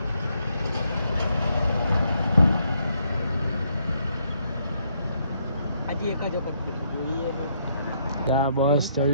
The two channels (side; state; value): both; inverted; correlation -0.74